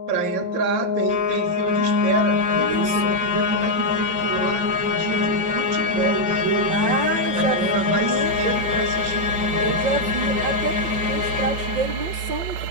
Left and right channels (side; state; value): left; late; 5.7 ms